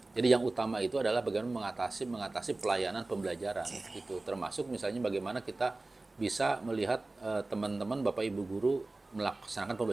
Jadi yang utama itu adalah bagaimana mengatasi pelayanan pembelajaran itu, termasuk misalnya bagaimana kita bisa melihat teman-teman Bapak Ibu guru melaksanakan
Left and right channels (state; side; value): quieter; left; 3.1 dB